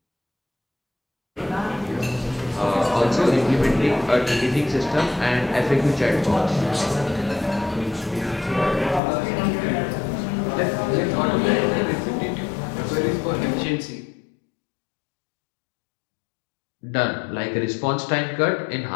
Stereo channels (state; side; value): drops out; right; at 9.0 s